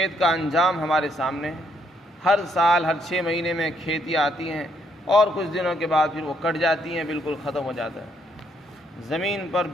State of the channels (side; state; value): both; normal; correlation 0.72